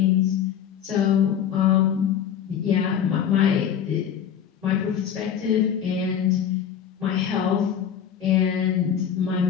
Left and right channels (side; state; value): right; quieter; 8.8 dB